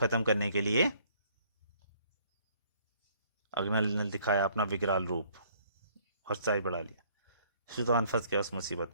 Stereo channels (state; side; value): inverted; both; correlation -0.61